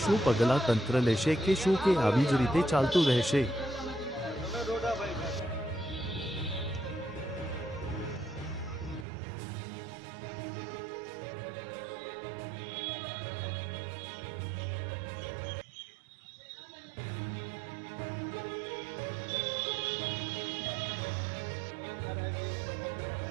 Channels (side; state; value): left; drops out; at 9.1 s